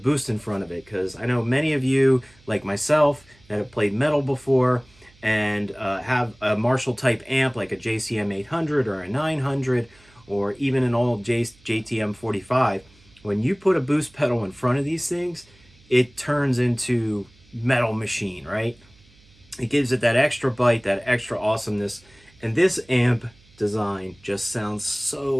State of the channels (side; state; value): right; noise; hum, 29 dB below the sound